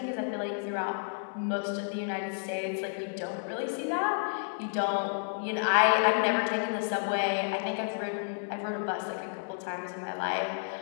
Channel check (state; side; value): silent; right; 57 dB below the other